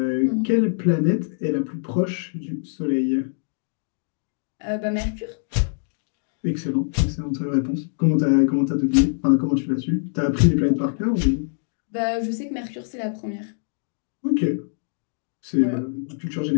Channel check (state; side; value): silent; right; digital silence